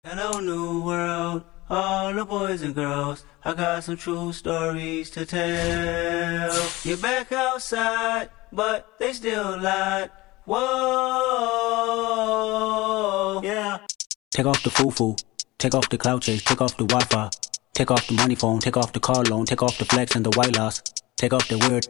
Hello, new world, all the boys and girls. I got some true stories to tell. You're back outside, but they still lied. Whoa, yeah. Take off the foo-foo, take off the cloud chase, take off the Wi-Fi, take off the money phone, take off the car loan, take off the flex and the white loss, take off the weird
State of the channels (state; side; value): quieter; right; 20.5 dB